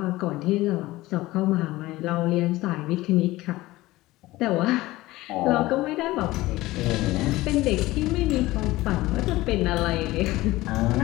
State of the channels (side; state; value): right; quieter; 18.3 dB